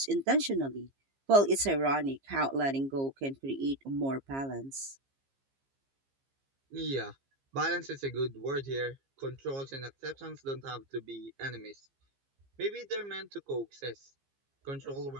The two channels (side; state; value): left; late; 15 ms